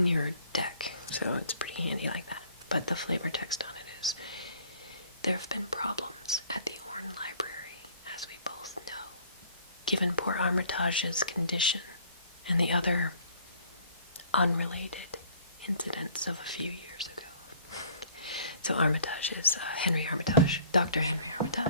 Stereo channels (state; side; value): inverted; both; correlation -0.55